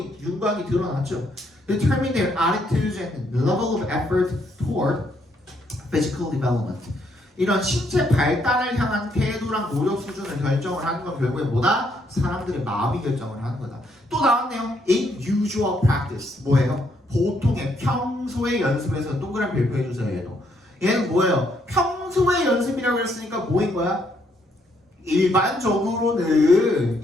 윤곽이 드러났죠. Determine their attitudes and level of effort toward physical development. 이런 신체 발달을 향한 태도랑 노력 수준을 결정을 하는 건 결국에 뭐다? 사람들의 마음이 결정을 하는 거다. 또 나왔네요. In usual practice. 뭐예요? 보통의 평소의 연습에서 동그라미 별표해주세요. 얘는 뭐예요? 평소의 연습이라고 했으니까 뭐인 거야? 일반적으로는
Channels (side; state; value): both; normal; correlation 0.72